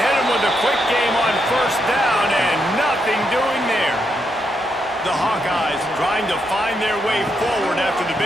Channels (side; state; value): both; normal; correlation 0.80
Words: him with a quick game on first down, and nothing doing there. The Hawkeyes trying to find their way forward after the